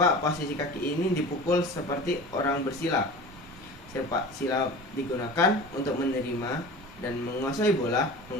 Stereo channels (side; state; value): both; normal; correlation 0.36